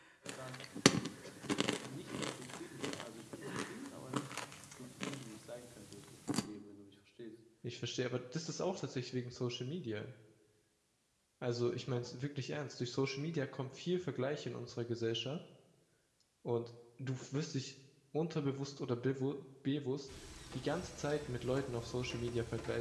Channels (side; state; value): both; identical; correlation 1.00